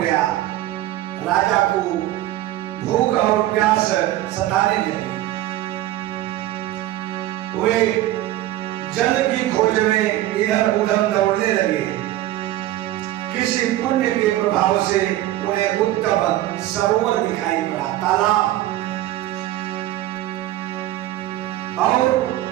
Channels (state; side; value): quieter; left; 14.8 dB